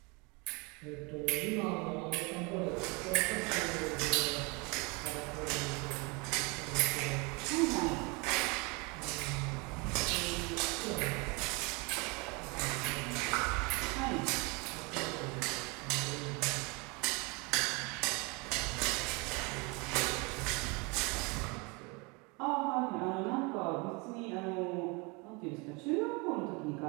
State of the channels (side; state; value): left; quieter; 29.0 dB